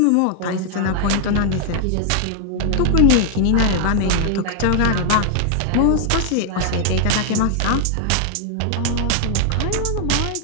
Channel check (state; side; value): different; both; correlation 0.00